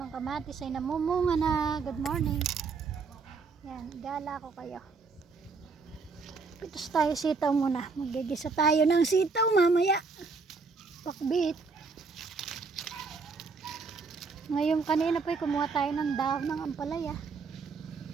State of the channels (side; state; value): left; quieter; 4.6 dB